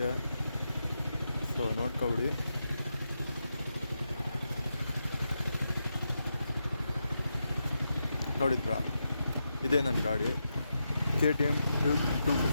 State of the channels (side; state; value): both; inverted; correlation -0.86